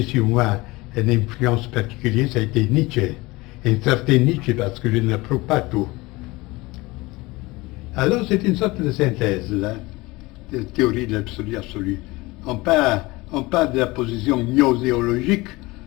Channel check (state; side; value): quieter; right; 22.0 dB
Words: sur moi une influence particulière, ça a été Nietzsche. Un certain Nietzsche, parce que je ne l'approuve pas tout. Alors c'est une sorte de synthèse, là, de théorie de l'absolu absolu. On parle de la position gnoséologique,